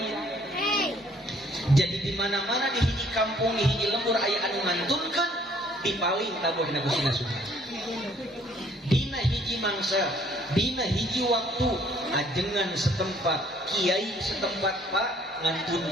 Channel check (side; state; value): both; normal; correlation 0.61